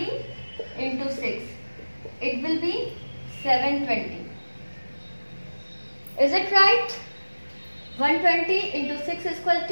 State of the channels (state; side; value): inverted; both; correlation -1.00